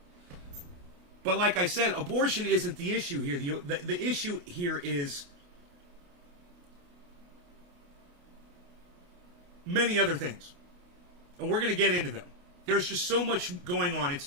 But like I said, abortion isn't the issue here. The issue here is many other things. And we're going to get into them. There's just so much going on. It's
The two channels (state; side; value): late; left; 28 ms